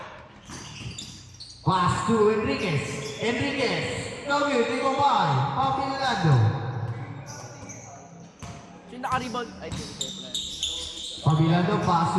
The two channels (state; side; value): identical; both; correlation 1.00